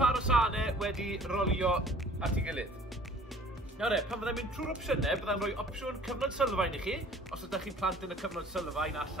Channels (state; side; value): normal; both; correlation 0.52